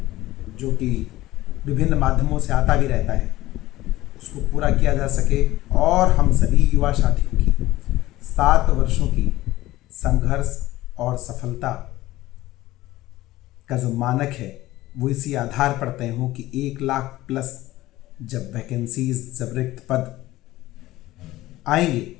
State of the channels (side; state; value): right; quieter; 16.8 dB